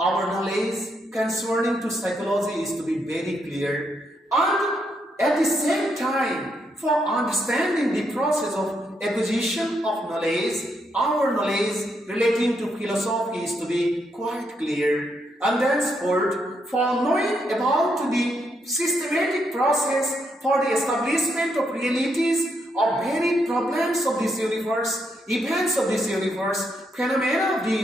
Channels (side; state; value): both; normal; correlation 0.78